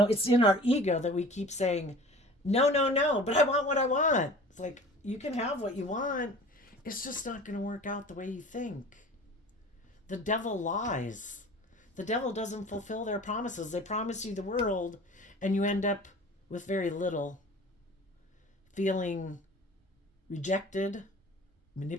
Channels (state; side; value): normal; both; correlation 0.43